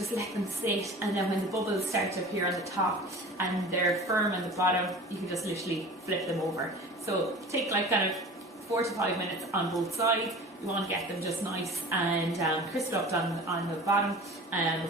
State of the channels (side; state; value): both; normal; correlation 0.39